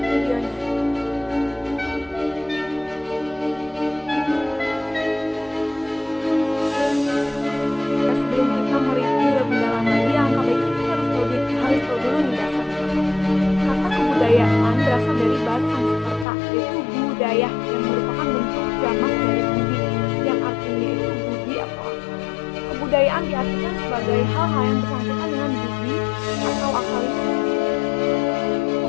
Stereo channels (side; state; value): right; drops out; at 16.2 s